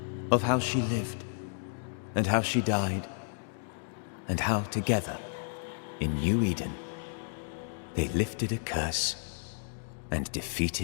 Of how she lived, and how she died, and how together, in New Eden, they lifted a curse and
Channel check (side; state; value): right; silent; digital silence